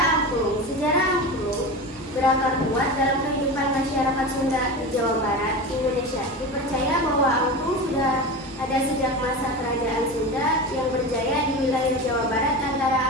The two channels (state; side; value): normal; both; correlation 0.26